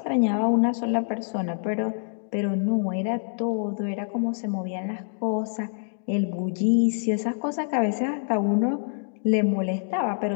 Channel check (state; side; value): silent; right; digital silence